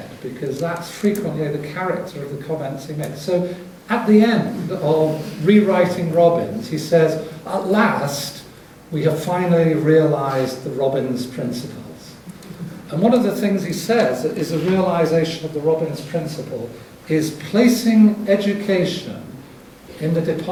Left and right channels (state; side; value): identical; both; correlation 1.00